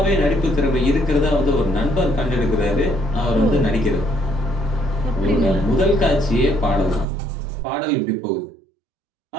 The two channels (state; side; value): drops out; left; at 7.1 s